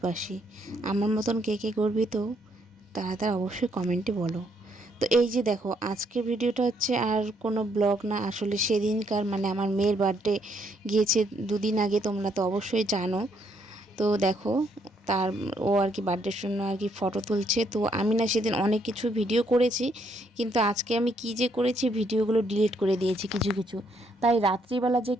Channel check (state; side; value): normal; both; correlation 0.71